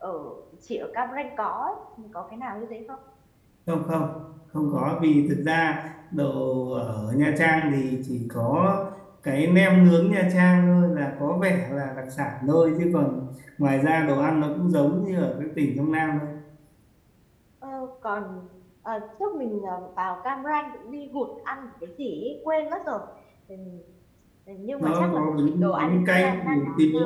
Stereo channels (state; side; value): identical; both; correlation 1.00